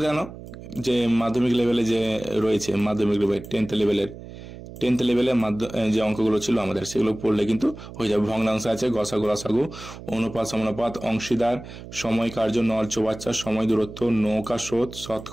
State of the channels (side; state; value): right; noise; hum, 14 dB below the sound